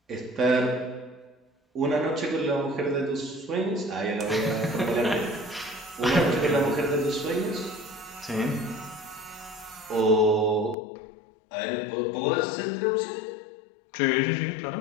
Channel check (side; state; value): right; drops out; at 10.8 s